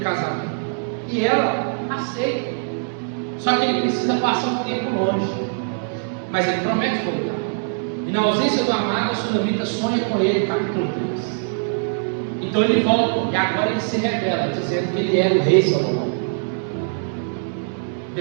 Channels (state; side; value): silent; left; digital silence